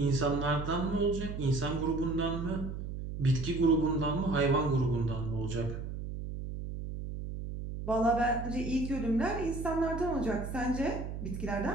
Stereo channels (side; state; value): right; noise; hum, 6 dB below the sound